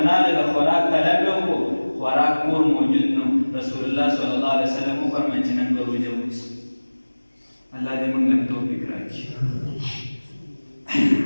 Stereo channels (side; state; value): both; inverted; correlation -1.00